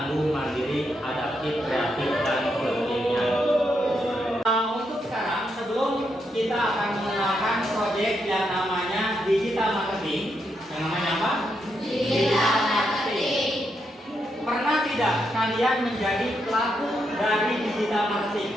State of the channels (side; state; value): both; normal; correlation 0.81